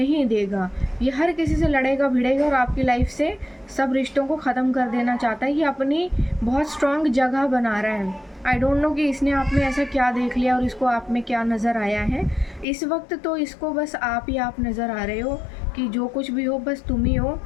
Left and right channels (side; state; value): right; drops out; at 12.7 s